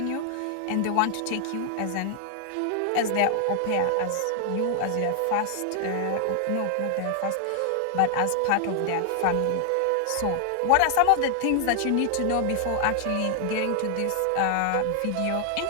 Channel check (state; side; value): different; both; correlation 0.00